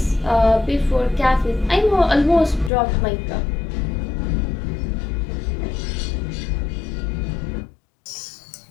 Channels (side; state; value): right; drops out; at 2.7 s